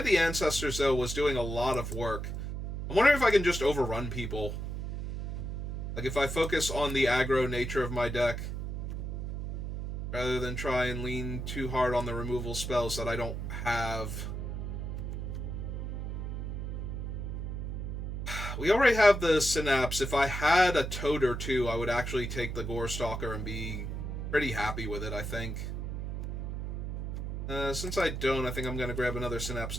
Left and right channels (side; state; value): right; noise; hum, 4 dB below the sound